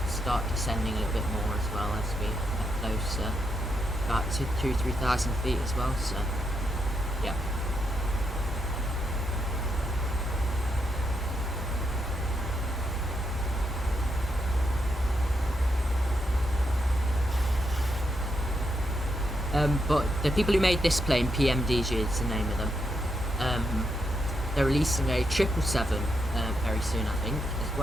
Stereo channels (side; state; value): both; normal; correlation 0.81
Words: start descending a little bit more as well as we get closer, about 2,000–3,000 feet as well. So, yeah. But the people who made this plane, PMDG is the name of them. They're releasing a 777 very soon, I think, as